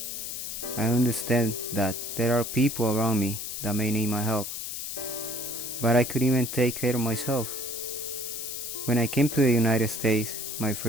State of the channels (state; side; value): noise; left; hiss, 6 dB below the sound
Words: I understand that there are people around me that may need my help. But I couldn't even take care of myself. When I came to the United States, my